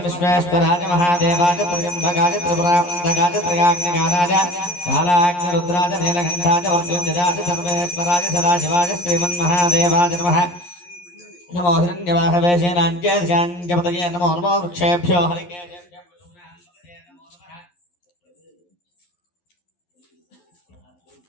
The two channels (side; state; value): right; late; 11 ms